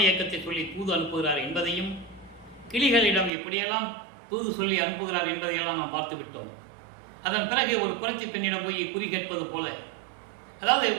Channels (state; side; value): drops out; left; at 3.3 s